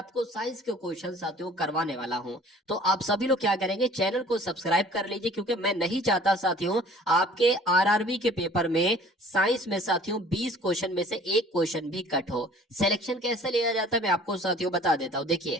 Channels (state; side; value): normal; both; correlation 0.51